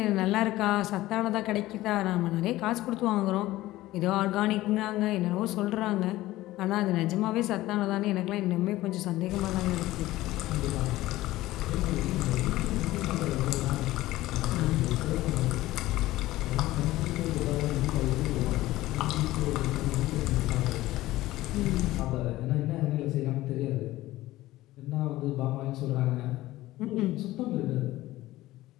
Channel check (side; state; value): right; quieter; 16.8 dB